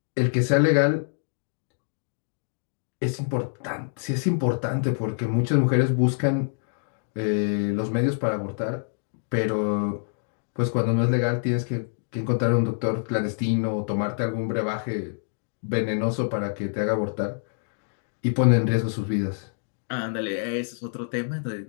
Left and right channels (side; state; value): right; silent; digital silence